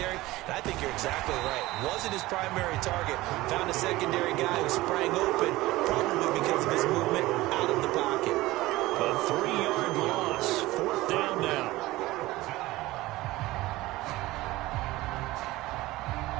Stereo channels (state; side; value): quieter; left; 18.6 dB